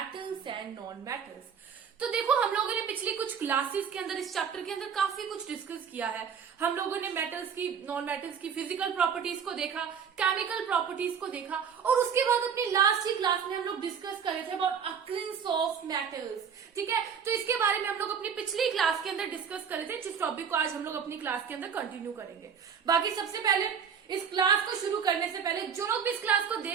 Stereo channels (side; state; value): left; quieter; 7.1 dB